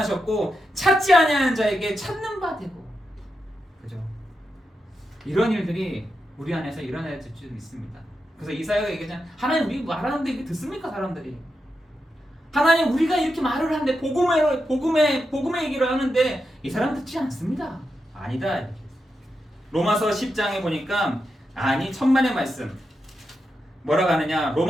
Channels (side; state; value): both; normal; correlation 0.87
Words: 찾지 아니하는 자에게 찾는 바 되고, 그죠? 이런 일들이 우리 안에서 일어날 줄 믿습니다. 그래서 이사야가 얘기하잖아요. 하나님 우리 말하는데 이게 듣습니까 사람들이? 하나님 우리가 이렇게 말을 하는데 복음의 얘기를 하는데 이 사람 듣지 않습니다. 아니다. 로마서 10장에 보니까 천만의 말씀 뭐라고 하느냐,